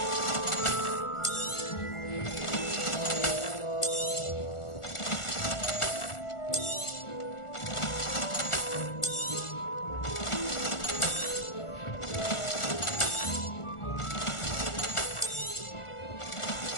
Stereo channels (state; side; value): late; right; 1.4 ms